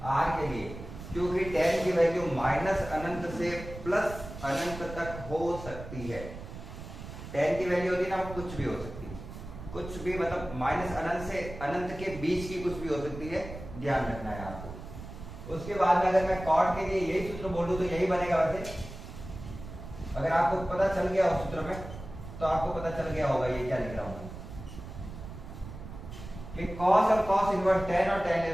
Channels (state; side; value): noise; right; rumble, 12 dB below the sound